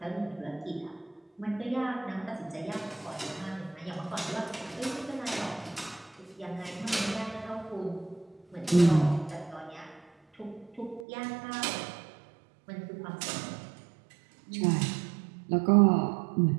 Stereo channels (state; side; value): drops out; left; at 11.0 s